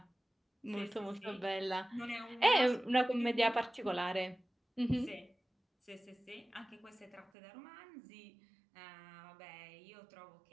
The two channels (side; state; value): left; drops out; at 7.3 s